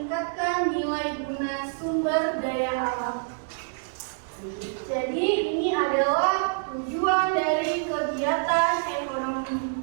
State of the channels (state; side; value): silent; left; digital silence